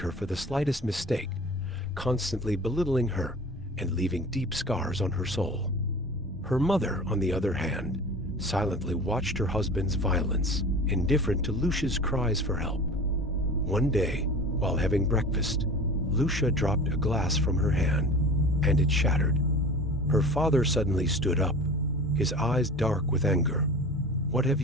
for the slightest mistake, constantly belittling her and leaving deep scars on her soul. Her mother, on the other hand, silently watched her husband's violence, indifferent to Lucia's cries for help. One day, while having breakfast, Lucia dropped a glass from her hand, and it shattered. Her father suddenly stood up, his eyes dark with anger. "What have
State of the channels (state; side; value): normal; both; correlation 0.38